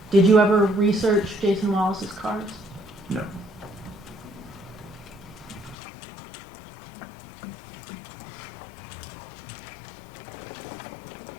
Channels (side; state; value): right; drops out; at 5.8 s